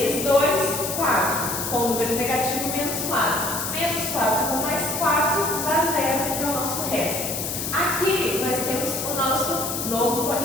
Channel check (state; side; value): noise; left; hiss, 3 dB below the sound